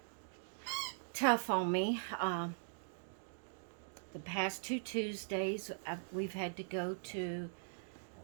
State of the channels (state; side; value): silent; left; digital silence